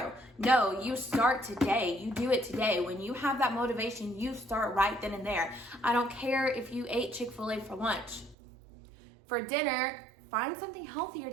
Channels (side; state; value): left; drops out; at 8.3 s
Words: No, you start today. You do it today. When you have that motivation, you start right then and there. I don't care if you ate Chick-fil-A for lunch. For dinner, find something healthier